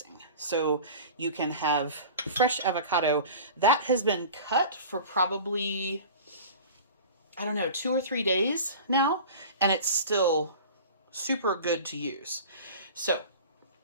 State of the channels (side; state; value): both; inverted; correlation -0.37